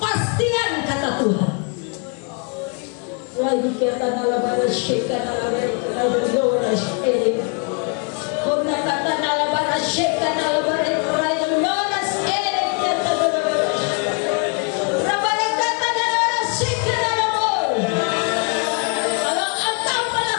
kata Tuhan. Lagi kata nalabara syekha nalabara lora syekha. Kona kata nalabara syekha nalabara lora syekha. Rabara kata nalabara syekha nalabara. Kalau engkau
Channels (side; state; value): right; quieter; 36.5 dB